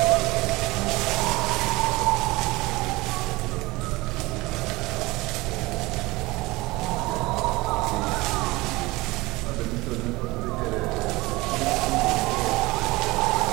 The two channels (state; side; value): quieter; left; 21.6 dB